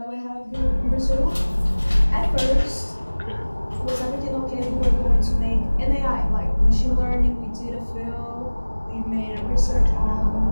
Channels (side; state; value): both; inverted; correlation -1.00